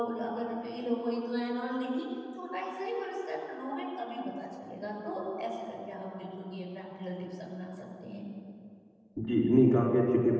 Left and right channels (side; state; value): both; identical; correlation 1.00